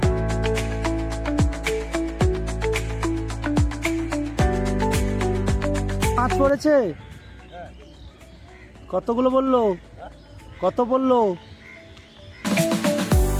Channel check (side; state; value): both; identical; correlation 1.00